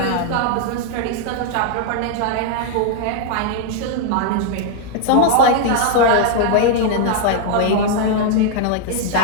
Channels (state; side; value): different; both; correlation 0.00